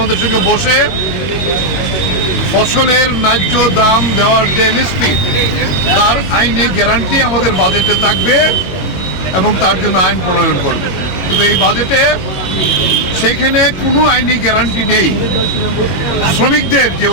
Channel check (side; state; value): right; late; 21 ms